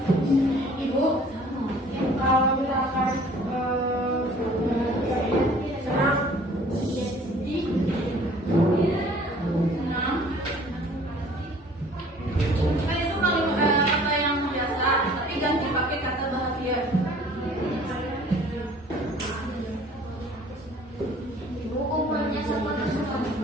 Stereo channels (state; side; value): normal; both; correlation 0.52